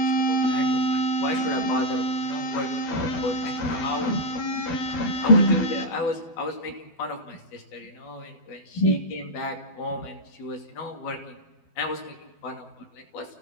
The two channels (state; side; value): late; right; 12 ms